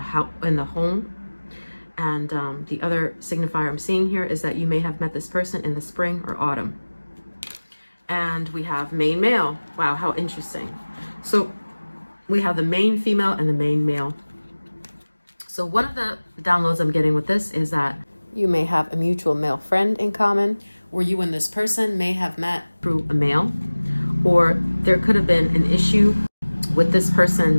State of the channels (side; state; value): both; inverted; correlation -1.00